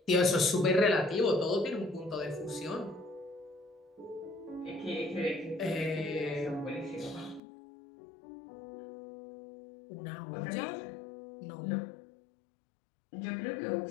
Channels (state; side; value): drops out; right; at 7.4 s